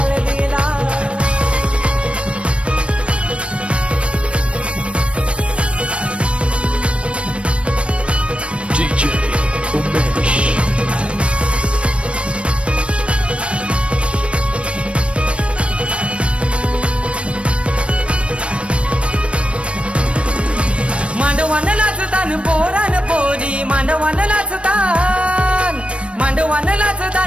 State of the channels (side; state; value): left; late; 0.060 ms